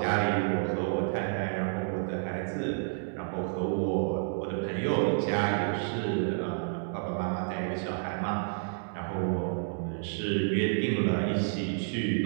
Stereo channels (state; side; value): silent; left; 58 dB below the other